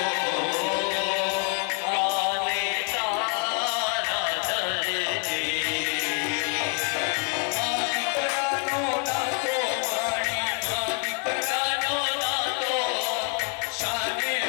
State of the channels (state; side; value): quieter; right; 36.9 dB